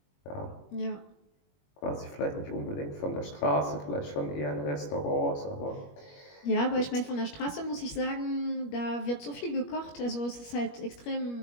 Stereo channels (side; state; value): right; late; 21 ms